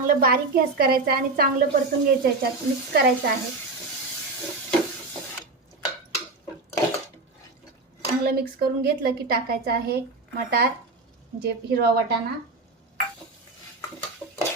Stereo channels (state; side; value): quieter; left; 3.5 dB